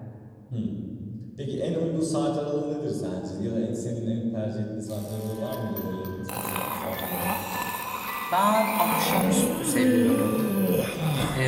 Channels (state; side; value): identical; both; correlation 1.00